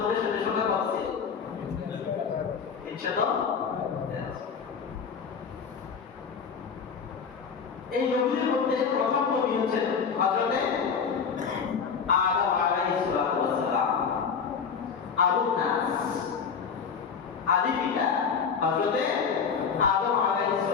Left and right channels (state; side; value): quieter; right; 6.2 dB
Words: সৈন্য সংখ্যা কত ছিল? 300। এই নবীদের মধ্যে প্রথম নবী হচ্ছেন হযরতে আদম আলাইহিস সালাতু ওয়াস সালাম, আবুন নাস, আদি পিতা হযরতে আদম আলাইহিস